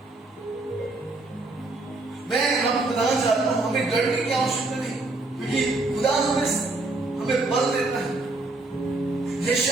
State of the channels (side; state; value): left; quieter; 3.1 dB